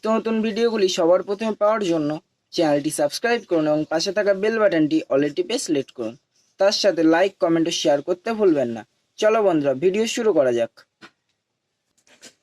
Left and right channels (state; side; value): identical; both; correlation 1.00